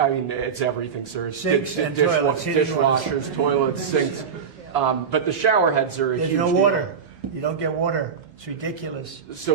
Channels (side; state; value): left; quieter; 6.5 dB